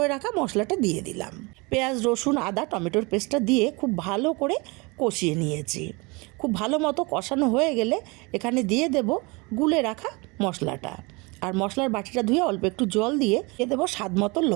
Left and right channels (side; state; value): left; quieter; 27.0 dB